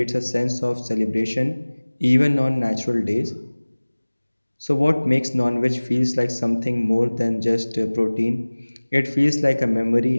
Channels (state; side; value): inverted; both; correlation -1.00